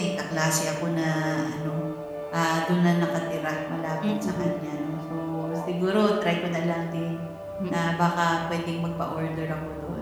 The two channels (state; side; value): identical; both; correlation 1.00